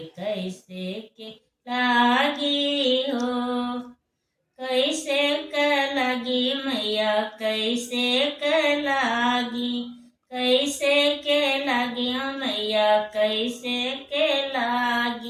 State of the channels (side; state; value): both; identical; correlation 1.00